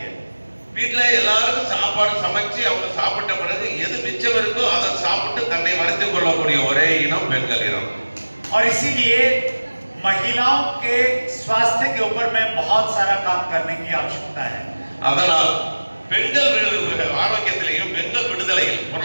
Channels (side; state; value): both; inverted; correlation -1.00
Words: है. வீட்டுல எல்லாருக்கும் சாப்பாடு சமைச்சு அவங்க சாப்பிட்ட பிறகு எது மிச்சம் இருக்கோ அதை சாப்பிட்டு தன்னை வளர்த்துக் கொள்ளக்கூடிய ஒரே இனம் பெண்கள் இனம். और इसीलिए महिलाओं के स्वास्थ्य के ऊपर में बहुत सारा काम करने की आवश्यकता है. அதனால் பெண்கள் ஆரோக்கியத்திலையும் பெண்கள் விடுதலையில்